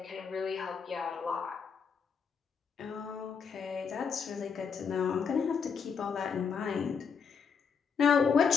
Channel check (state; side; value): quieter; right; 6.3 dB